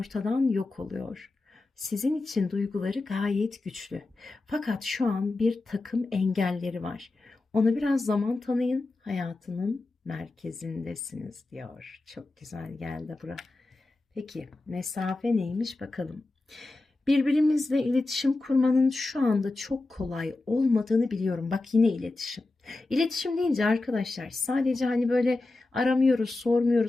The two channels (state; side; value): quieter; right; 3.1 dB